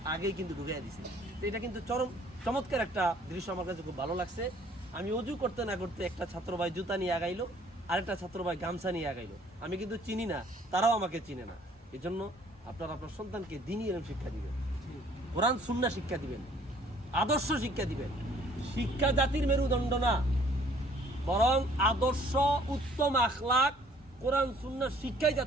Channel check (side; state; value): both; normal; correlation 0.58